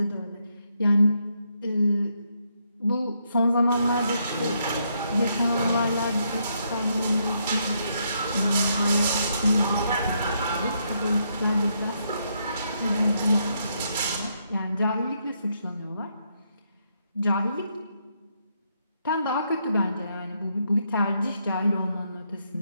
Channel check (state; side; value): inverted; both; correlation -0.77